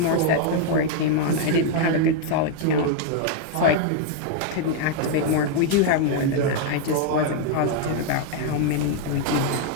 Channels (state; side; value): different; both; correlation 0.00